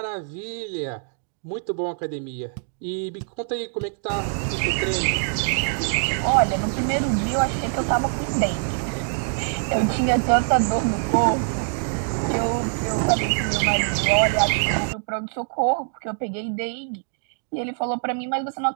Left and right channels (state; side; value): silent; left; digital silence